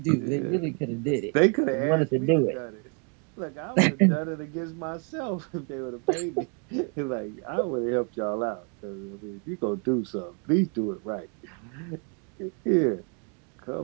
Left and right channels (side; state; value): left; quieter; 37.8 dB